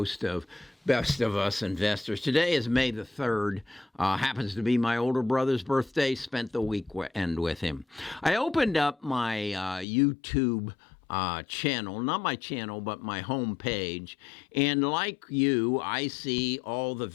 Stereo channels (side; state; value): right; drops out; at 9.9 s